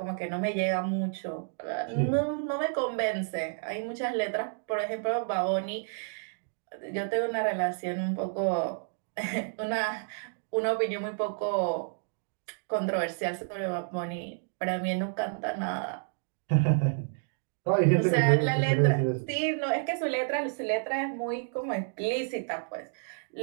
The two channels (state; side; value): silent; left; digital silence